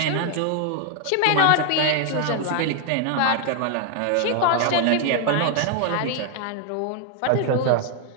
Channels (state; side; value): different; both; correlation 0.00